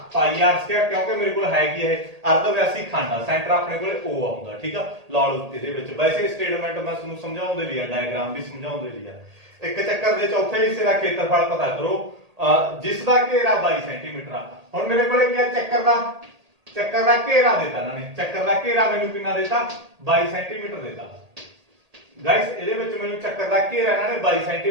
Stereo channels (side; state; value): left; late; 1.8 ms